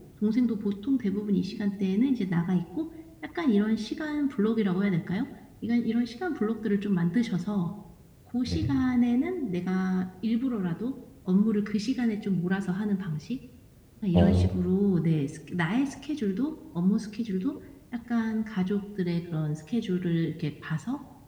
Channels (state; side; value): identical; both; correlation 1.00